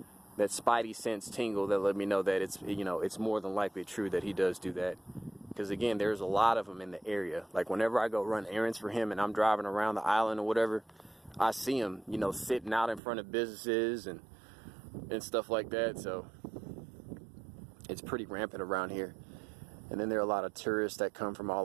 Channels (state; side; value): drops out; left; at 13.0 s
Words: spidey sense tingle that let me know that it's more than likely true that he does do that. Because again, there's a lot of them in the area. Like whenever I go run errands for him and I'm driving around the island or whatever, I see him, sitting out in front of businesses and stuff like that. So it's pretty rampant around here. And then there are a lot of tourists that come from